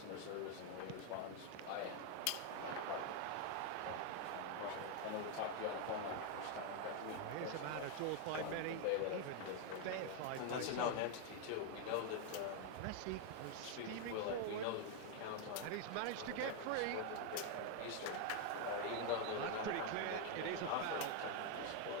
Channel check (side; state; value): both; different; correlation 0.00